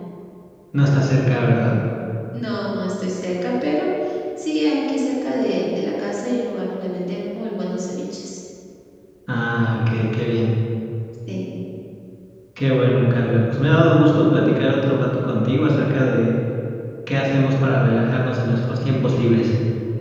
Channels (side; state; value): both; identical; correlation 1.00